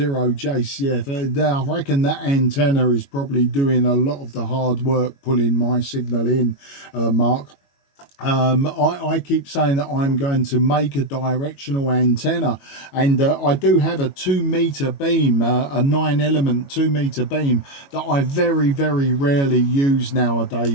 I reckon that antenna is probably doing a lot of the hard work pulling my signal in, Mark. I keep saying that I'm going to make a directional antenna, and I do have a 2-meter beam, a 9-element 2-meter beam that I very rarely use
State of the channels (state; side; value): late; right; 22 ms